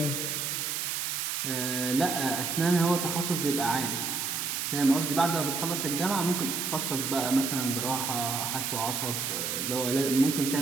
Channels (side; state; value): right; noise; hiss, 1 dB below the sound